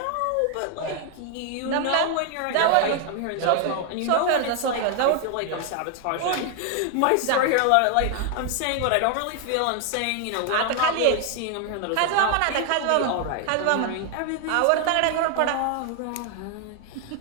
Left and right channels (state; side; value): different; both; correlation 0.00